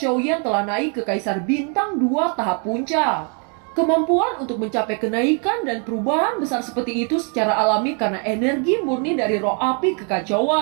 telah naik ke Kaisar Bintang 2 tahap puncak. Kemampuan untuk mencapai kenaikan dan perubahan besar seperti itu secara alami karena energi murni dari roh api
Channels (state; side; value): quieter; left; 39.9 dB